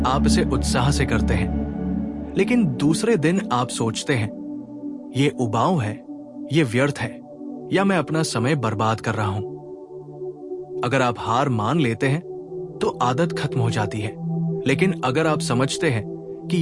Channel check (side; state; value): both; identical; correlation 1.00